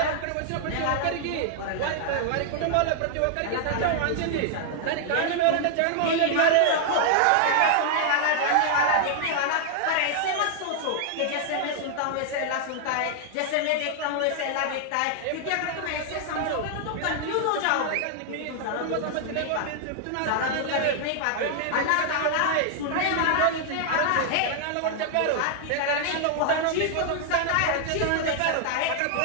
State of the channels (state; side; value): different; both; correlation -0.01